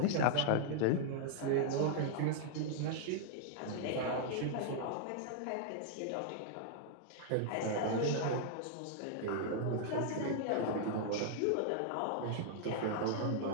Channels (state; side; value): different; both; correlation -0.01